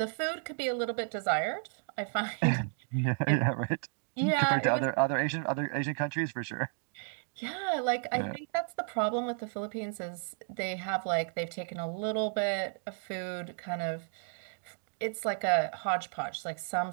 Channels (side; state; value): left; silent; 56 dB below the other